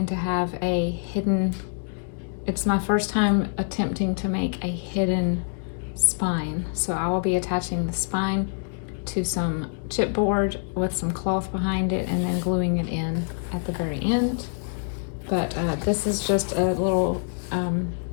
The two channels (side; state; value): right; silent; 61 dB below the other